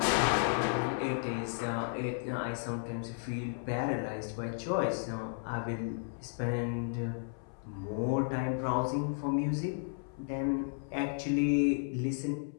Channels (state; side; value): silent; right; 55 dB below the other